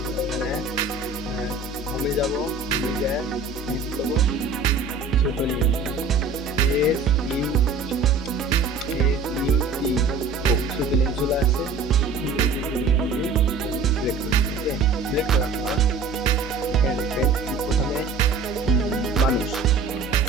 এখানে হোমে যাবো, হোমে যায় এখানে কী করবো ছোট নিয়ে SUT ছোট নিয়ে চলে আসছে, সিলেক্ট করবো। ওকে, সিলেক্ট করার পর এখানে দেখবেন প্রথমে মানুষ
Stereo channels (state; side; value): quieter; left; 4.2 dB